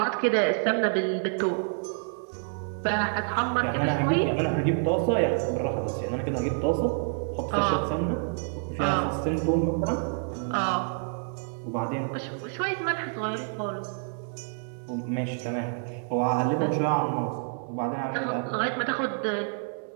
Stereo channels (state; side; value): silent; left; 59 dB below the other